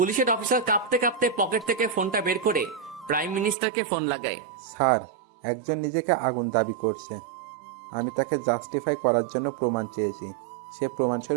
অফিসার কাঁপতে কাঁপতে পকেট থেকে ফোনটা বের করে প্রাইম মিনিস্টারকে ফোন লাগায়। স্যার, একজন নিজেকে আগুন দাবি করছে। আমি তাকে জাস্টিফাই করার জন্য প্রমাণ চেয়েছি। সে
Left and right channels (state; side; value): drops out; left; at 3.6 s